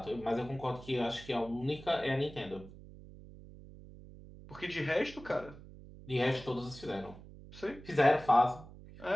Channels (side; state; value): right; noise; hum, 17 dB below the sound